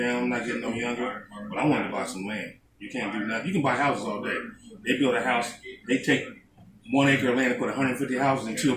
I'm not getting no younger. But I wanted to buy some land. You can't do nothing. You can buy houses all day. They build a house. They take 1 acre of land and put 150 houses and 2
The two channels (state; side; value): identical; both; correlation 1.00